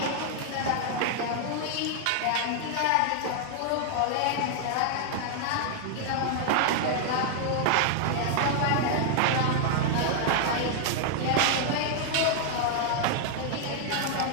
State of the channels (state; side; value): different; both; correlation 0.00